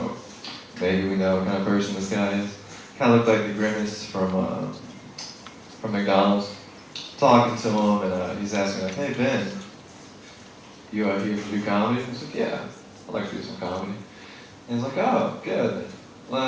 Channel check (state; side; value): identical; both; correlation 1.00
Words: maybe we know what kind of person this guy is. Kind of looked like the Grimace from McDonald's. Talking to him, and he's asking like, hey Ben, you out here to do comedy? I was like, yeah, I'd like to do some comedy. And he's like, oh, good.